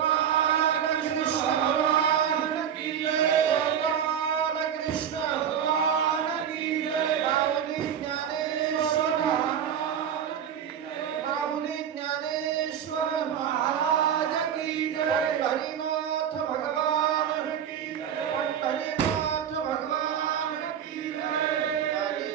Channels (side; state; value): left; quieter; 8.8 dB